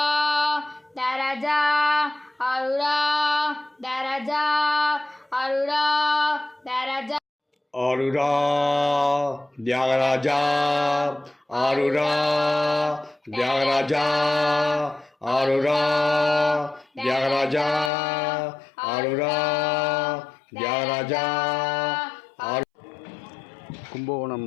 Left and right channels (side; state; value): right; drops out; at 17.9 s